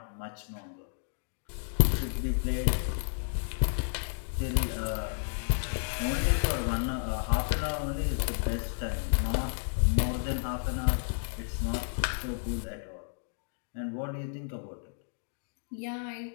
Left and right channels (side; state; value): right; silent; digital silence